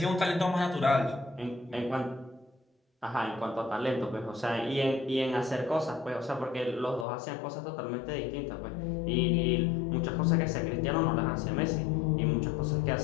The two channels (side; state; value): right; drops out; at 7.1 s